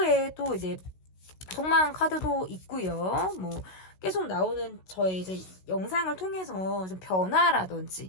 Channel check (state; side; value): late; right; 16 ms